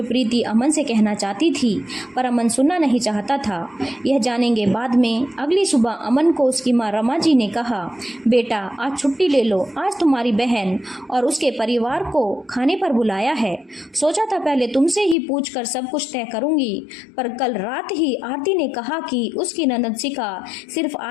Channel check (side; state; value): right; drops out; at 15.2 s